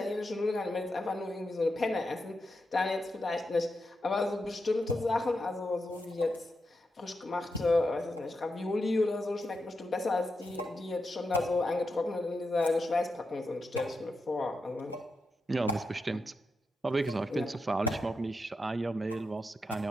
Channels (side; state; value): both; normal; correlation 0.87